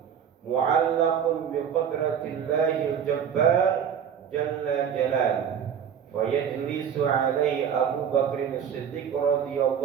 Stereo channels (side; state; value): left; quieter; 8.1 dB